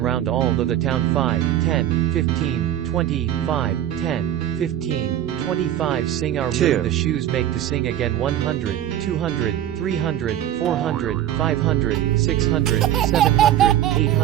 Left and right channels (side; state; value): left; quieter; 11.6 dB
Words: round all of the town 5, 10, 15, 20, 5, 10, 15, 25 Sing our 2. moon the shoes make to sing again 100, 200, 300, 400, 500, 600, 700,